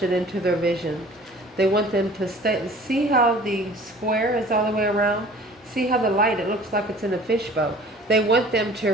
into their vision. They want them to stay. See how the square is all the way around? See how the light, it looks like it's in a fishbowl. They want them to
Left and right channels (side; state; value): both; normal; correlation 0.48